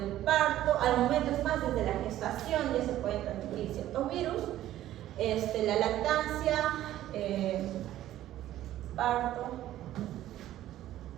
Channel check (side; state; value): left; quieter; 13.5 dB